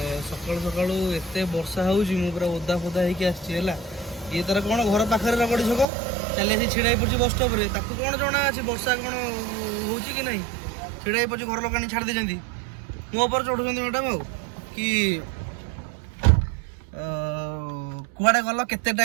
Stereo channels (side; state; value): left; drops out; at 5.9 s